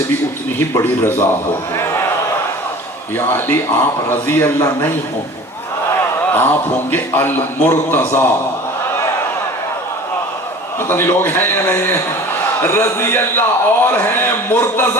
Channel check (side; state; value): both; normal; correlation 0.42